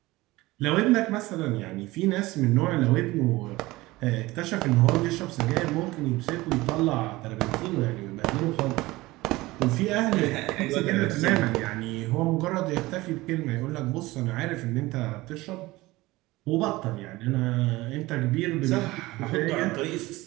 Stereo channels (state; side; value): quieter; left; 19.7 dB